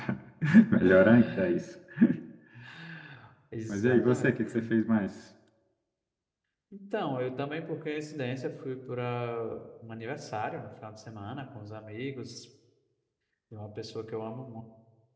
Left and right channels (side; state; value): both; identical; correlation 1.00